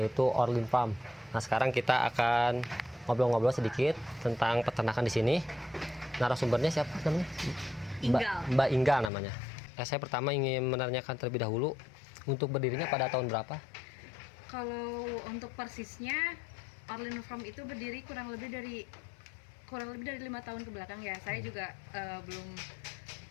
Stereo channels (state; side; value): drops out; right; at 9.1 s